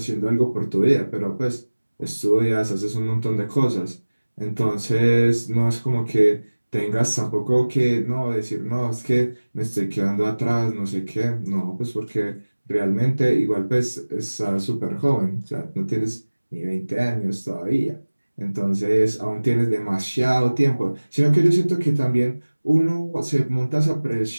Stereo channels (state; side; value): inverted; both; correlation -1.00